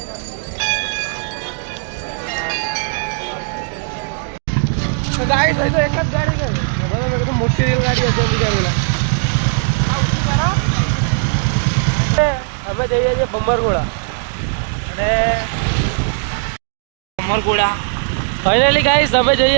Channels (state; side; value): silent; left; digital silence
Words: ગાડી તો એક જ ગાડી ગઈ મોટી રેલગાડી હશે બીજા પેલા અમે જઈએ છીએ બંબરગોળા અને બંબરગોળા ફાઇનલી ગાઈસ અમે